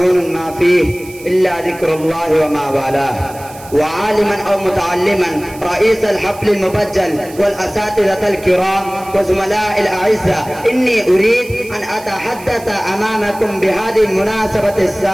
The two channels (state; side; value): noise; right; hiss, 19 dB below the sound